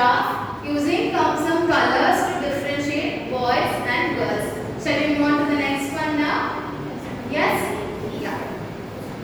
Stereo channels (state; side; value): identical; both; correlation 1.00